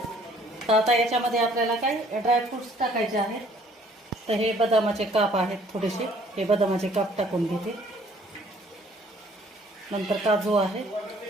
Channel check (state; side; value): normal; both; correlation 0.59